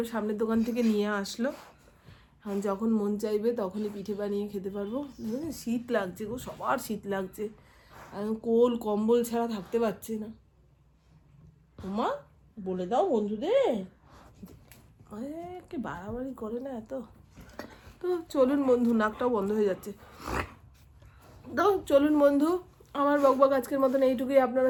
সামনের দোকান থেকে নিয়ে আসলো। এখন যখন মন চাইবে তখনই পিঠে বানিয়ে খেতে পারবো। শীত লাগছে গো, সবার শীত লাগছে, এখন কোল কম্বল ছাড়া থাকতে পারছে না। মা বলে দাও বন্ধুদের, কে বাড়াবাড়ি করে না এত। তো চলুন বন্ধু, নাকটাও বন্ধ হয়ে যাচ্ছে। তো চলুন বন্ধু, আমার বকবক আজকের মতন এইটুকুই।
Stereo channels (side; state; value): both; identical; correlation 1.00